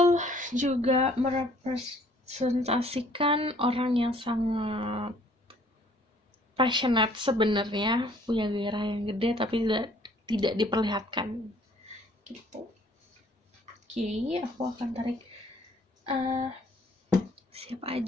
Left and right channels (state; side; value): normal; both; correlation 0.59